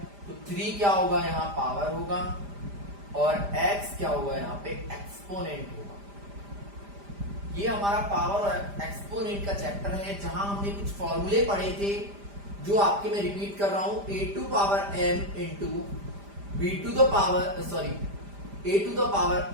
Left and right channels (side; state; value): left; late; 5.0 ms